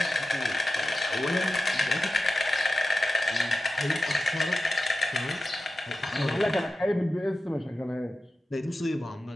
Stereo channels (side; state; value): both; normal; correlation 0.93